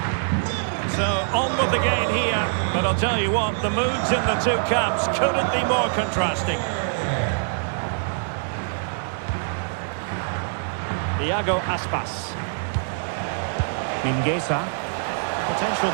So, on with the gain here. But I'll tell you what, the moods in the two camps couldn't be more contrasting. Iago Aspas. Mingueza. Potential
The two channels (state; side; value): silent; left; 61 dB below the other